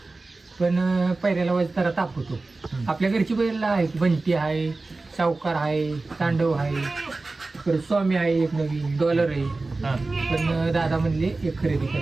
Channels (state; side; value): quieter; left; 3.4 dB